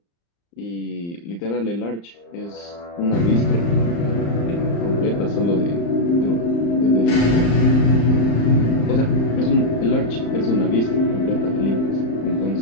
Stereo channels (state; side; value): late; right; 35 ms